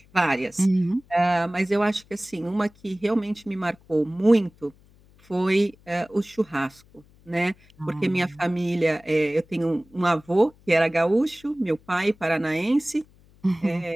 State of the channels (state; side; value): noise; left; hum, 29 dB below the sound